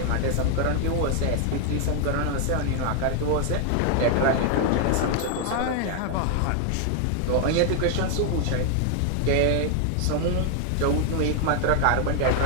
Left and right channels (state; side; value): different; both; correlation 0.00